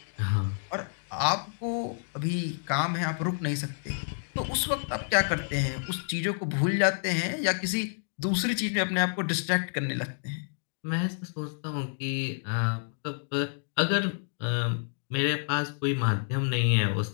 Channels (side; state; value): right; silent; digital silence